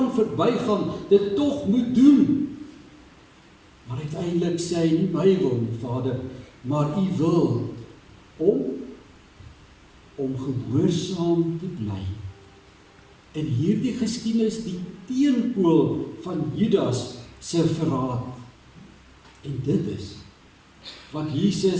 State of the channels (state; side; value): identical; both; correlation 1.00